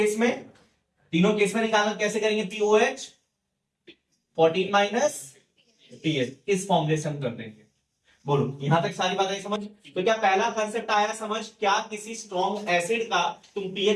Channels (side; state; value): both; identical; correlation 1.00